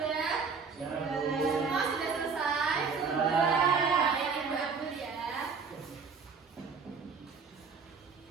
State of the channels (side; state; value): left; quieter; 5.4 dB